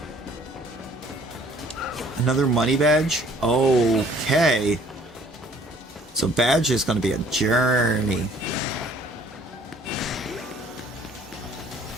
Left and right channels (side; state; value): both; normal; correlation 0.56